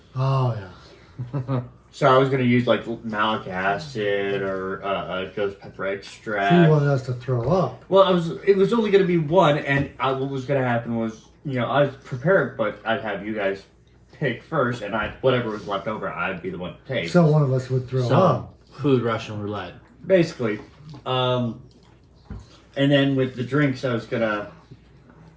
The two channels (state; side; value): identical; both; correlation 1.00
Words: Oh yeah. So I was gonna use like malic acid or ghost pepper He extract. wanted us to throw up. Well, it was only gonna be one, and what was gonna happen was, I was prepared, but I'd have you guys pick first, and whatever was left over, I'd be the one to take. So one of us would throw up. Food Russian roulette. Basically, and then with the drinks, I was gonna